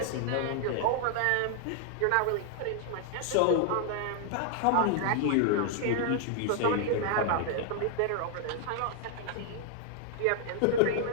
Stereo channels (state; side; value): different; both; correlation 0.00